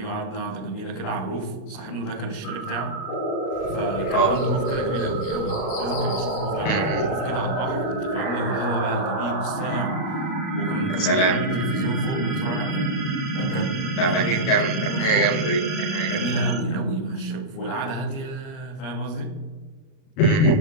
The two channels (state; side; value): late; right; 37 ms